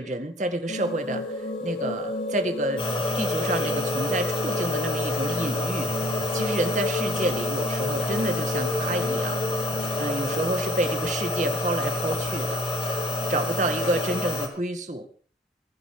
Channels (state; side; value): normal; both; correlation 0.52